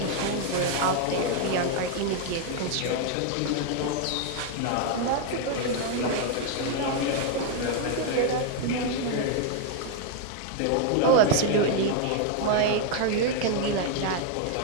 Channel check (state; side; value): different; both; correlation 0.00